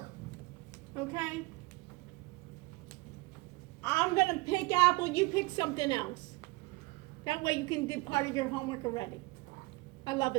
Okay? I'm going to pick Apple. You pick something else. That way you can do part of your homework already. I love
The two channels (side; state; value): left; quieter; 23.9 dB